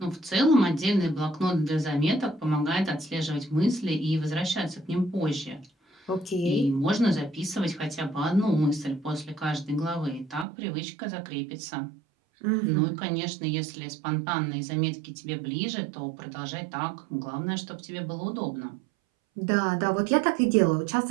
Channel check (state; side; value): drops out; left; at 10.5 s